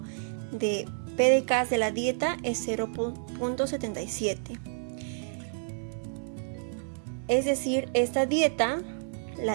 de PDCAAS de la dieta es 0.77. Es decir, esta dieta,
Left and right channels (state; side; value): silent; left; 58 dB below the other